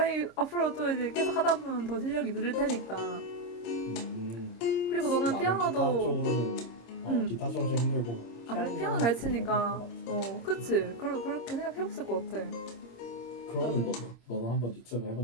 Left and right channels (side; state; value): right; late; 26 ms